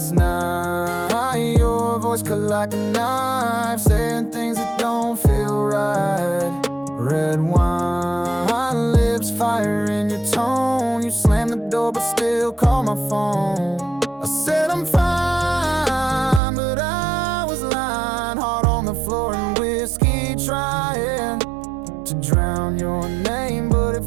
night, your voice cut like a knife, saying things that don't feel right. Red wine, lips, fire in your tone. You slammed the door but still call my phone. I said I'm fine, but I was lying. Heart on the floor and whiskey trying to drown your name, but it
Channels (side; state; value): left; drops out; at 16.4 s